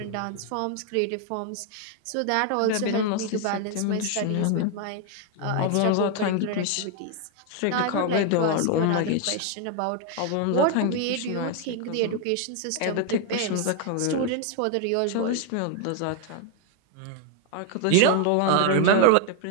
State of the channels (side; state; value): both; different; correlation 0.01